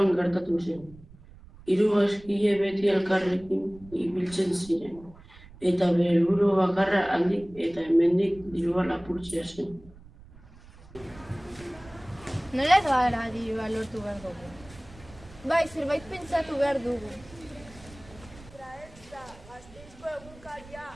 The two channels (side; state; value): right; noise; rumble, 21 dB below the sound